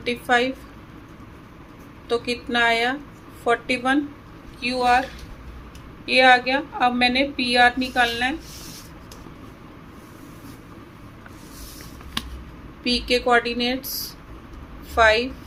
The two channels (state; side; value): identical; both; correlation 1.00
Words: तो कितना आया 41। क्यू आर ये आ गया। अब मैंने पी आर निकालना है। पी के कोऑर्डिनेट्स 5